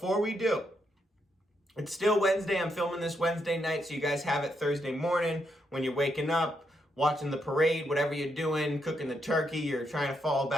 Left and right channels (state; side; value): normal; both; correlation 0.79